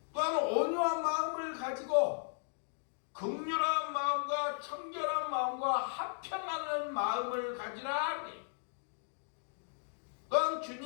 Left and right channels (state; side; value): silent; right; digital silence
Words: 또한 온유한 마음을 가지고 긍휼한 마음과 청결한 마음과 화평하는 마음을 가지라 그래. 또한